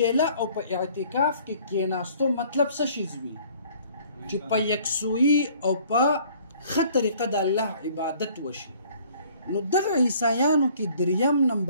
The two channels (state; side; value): inverted; both; correlation -0.56